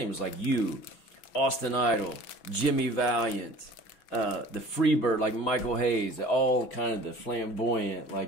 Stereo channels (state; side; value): late; right; 6.2 ms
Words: It was like you, Austin Idol, Jimmy Valiant, the Freebird, like Michael Hayes, all kind of the flamboyant,